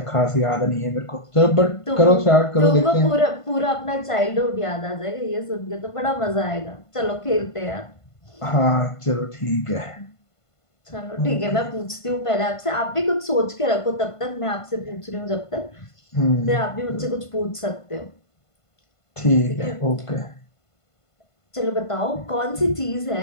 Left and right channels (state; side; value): late; right; 1.5 ms